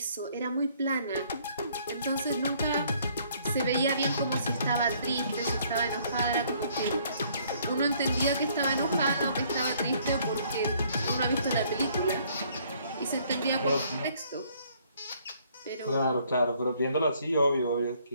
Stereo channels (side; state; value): both; inverted; correlation -0.63